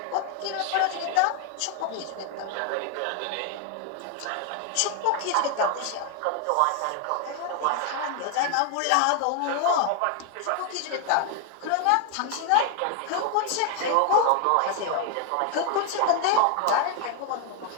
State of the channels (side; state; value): both; different; correlation 0.00